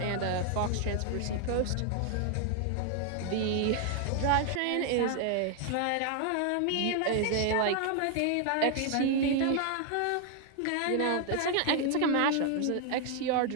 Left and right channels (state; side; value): different; both; correlation 0.00